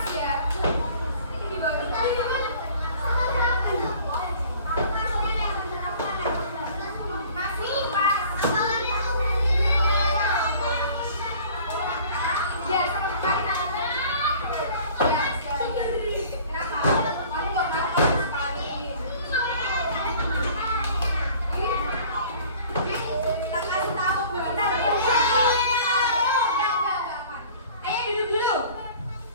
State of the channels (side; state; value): both; inverted; correlation -0.49